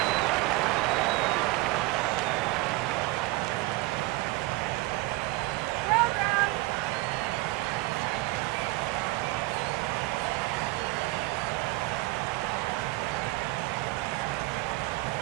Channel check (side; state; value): left; quieter; 20.6 dB